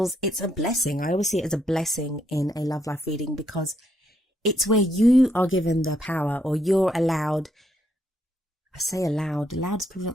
It's a blessing. I always see it as a blessing in a love life reading because it's where you are given the power, or you're allowed. I say allowed is probably not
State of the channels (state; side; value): normal; both; correlation 0.75